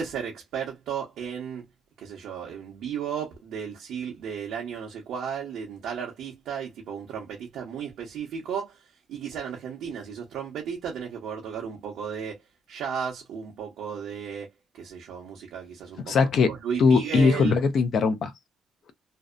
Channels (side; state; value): both; normal; correlation 0.72